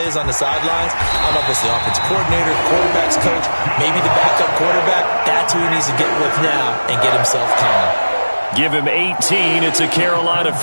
is on the sidelines, I don't know if it's the offensive coordinator, the quarterback's coach, maybe the backup quarterback, that's who he needs to get with now and get himself calm. Give him 18. It's a Carolina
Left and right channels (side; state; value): both; inverted; correlation -1.00